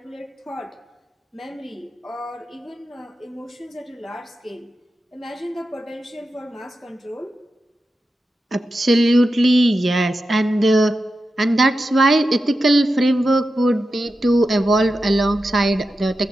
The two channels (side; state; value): both; normal; correlation 0.90